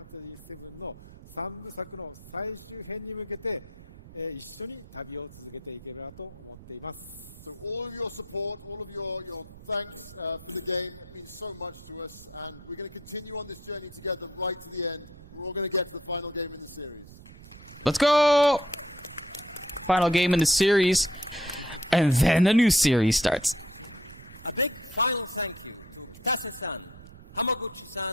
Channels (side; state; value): right; noise; rumble, 18 dB below the sound